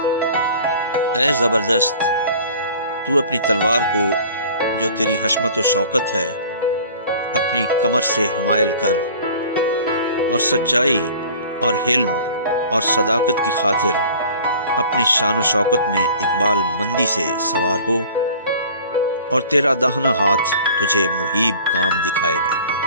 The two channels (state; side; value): inverted; both; correlation -0.46